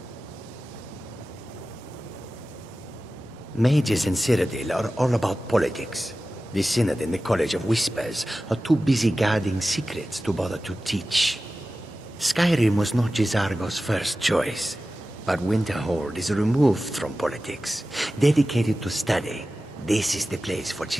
Mages in Cyrodiil are all about politics. The Synod and the College of Whispers are too busy guarding secrets to bother to teach. Skyrim was not Jizargo's first choice, but Winterhold is removed from politics, dedicated to study. This is the place for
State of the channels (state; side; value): normal; both; correlation 0.95